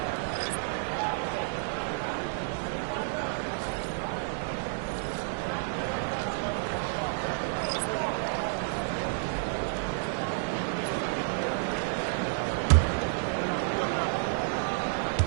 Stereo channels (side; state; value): left; silent; digital silence